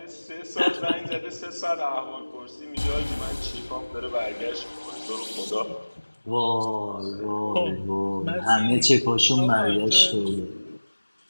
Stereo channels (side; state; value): both; inverted; correlation -1.00